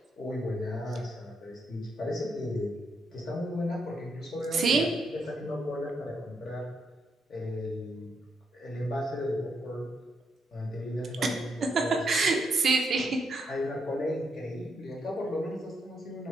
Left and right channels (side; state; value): both; normal; correlation 0.78